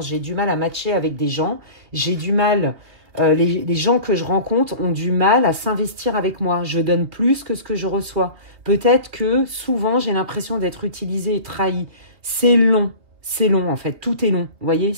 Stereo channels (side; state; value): left; late; 2.9 ms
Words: J'ai du mal à matcher avec des gens. J'ai du mal... les gens que je rencontre ont du mal à s'investir avec moi. Je donne plus que ce que je reçois. Peut-être que souvent, j'ai l'impression d'être utilisée et trahie. C'est long en fait. Tout est long. Vous voyez,